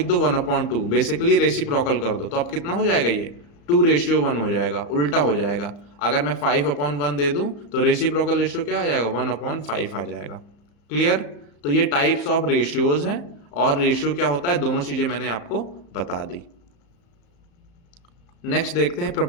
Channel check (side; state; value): right; late; 34 ms